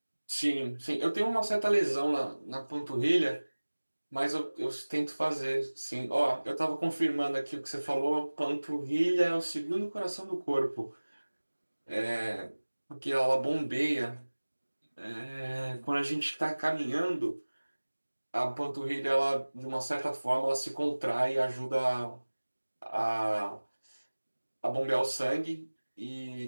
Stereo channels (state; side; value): inverted; both; correlation -1.00